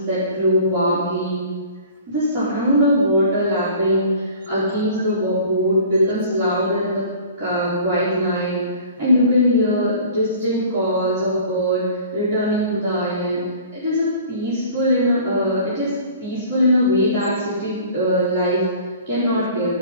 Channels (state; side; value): inverted; both; correlation -0.46